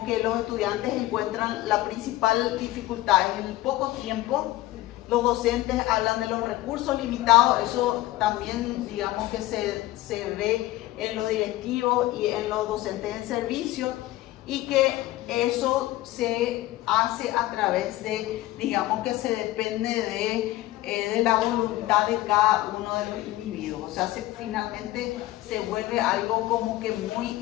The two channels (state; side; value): quieter; right; 16.8 dB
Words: que los estudiantes encuentran la principal dificultad en el poco tiempo. Los docentes hablan de los recursos limitados, eso también, digamos, que se ve en los directivos y en los docentes en servicio, y que eso se hace a través de, digamos, que se depende de la voluntad de cada uno de los individuos. O sea, finalmente se vuelve algo como que muy